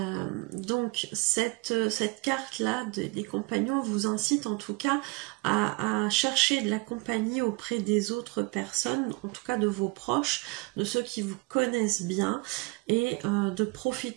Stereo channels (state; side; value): quieter; left; 26.8 dB